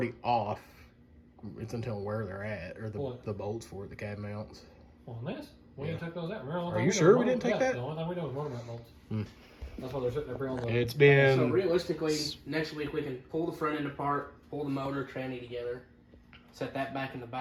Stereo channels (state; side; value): identical; both; correlation 1.00